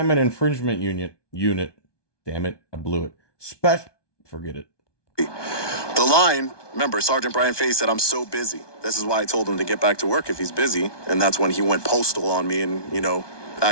infringement unit. Damn it, I blew it. Forget it. The line, remember, Sergeant Brian Fahey said, "I'm so busy." This is why I told him to get back to work if he's busy. And that's when he went postal on me and,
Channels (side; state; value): right; late; 1.2 ms